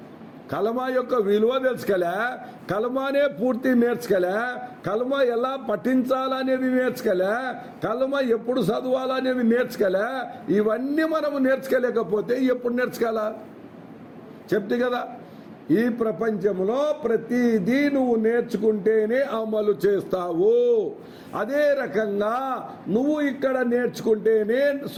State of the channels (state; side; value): identical; both; correlation 1.00